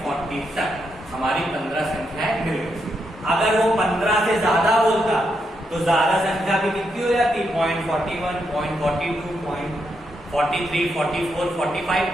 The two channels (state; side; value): normal; both; correlation 0.81